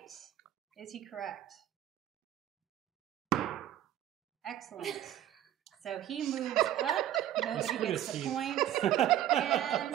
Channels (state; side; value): quieter; left; 12.0 dB